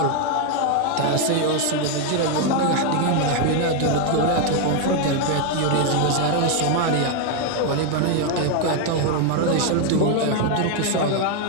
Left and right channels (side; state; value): both; different; correlation 0.01